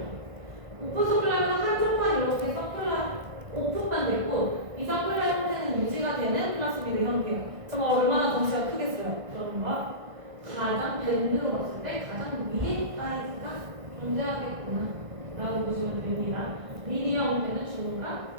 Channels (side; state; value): left; late; 1.6 ms